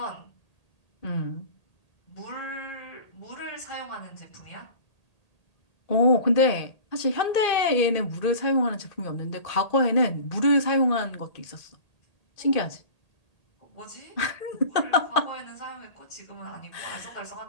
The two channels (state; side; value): late; right; 1.8 ms